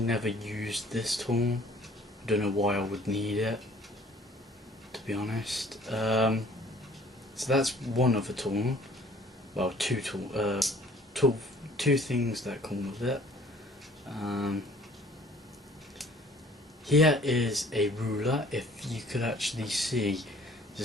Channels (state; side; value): normal; both; correlation 0.55